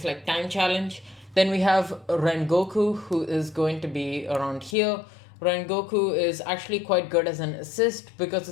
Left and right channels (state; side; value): drops out; right; at 4.8 s